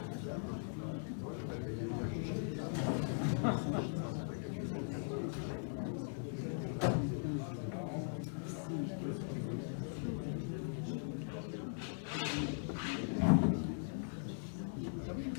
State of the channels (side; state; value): right; silent; 51 dB below the other